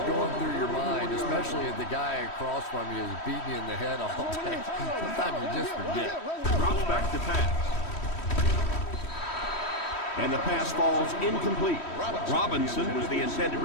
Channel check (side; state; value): right; late; 3.1 ms